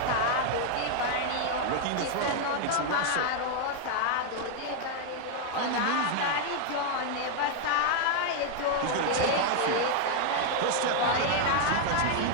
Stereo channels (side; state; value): both; different; correlation 0.00